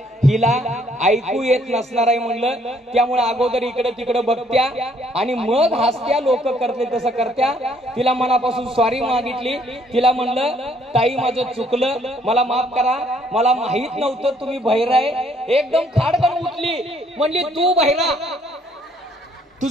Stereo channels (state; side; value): normal; both; correlation 0.65